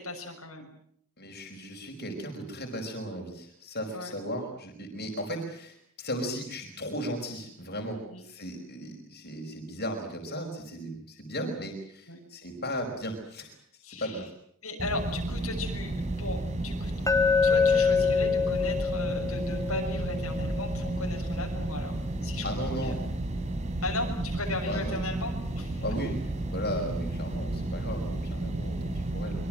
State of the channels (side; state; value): both; normal; correlation 0.55